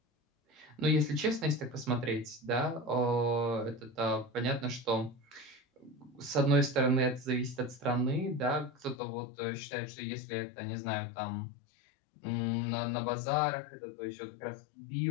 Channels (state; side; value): drops out; right; at 9.0 s